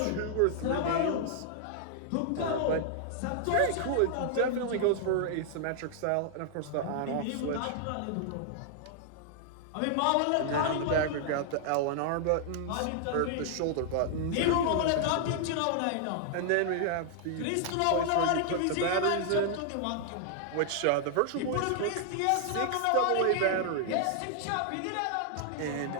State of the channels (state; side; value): different; both; correlation -0.01